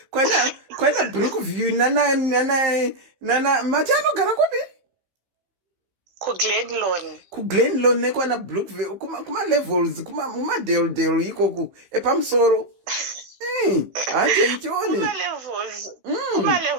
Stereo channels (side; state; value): left; late; 15 ms